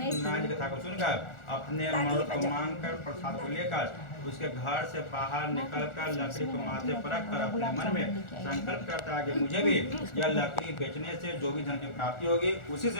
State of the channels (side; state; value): right; late; 1.4 ms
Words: जी की कथा को सुनकर अपने मर्द को मांगकर प्रसाद को लेकर उसके घर से बाहर निकलकर लकड़ी को माथे पर रखकर अपने मन में संकल्प करता है कि मुझे भी यह लकड़ी बेचने से जो भी धन की प्राप्ति होगी, उसी से